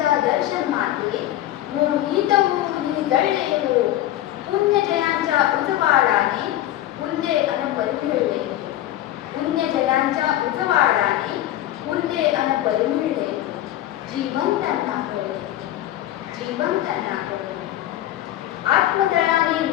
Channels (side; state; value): right; quieter; 13.6 dB